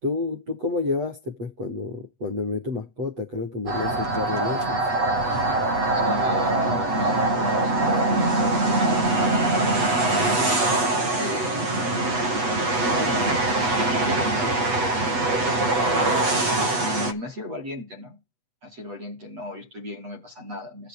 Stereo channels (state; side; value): late; left; 8.1 ms